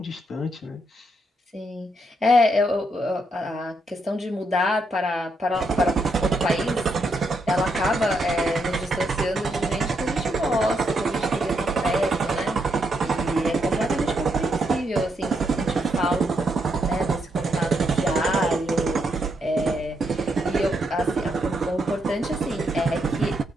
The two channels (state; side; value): normal; both; correlation 0.78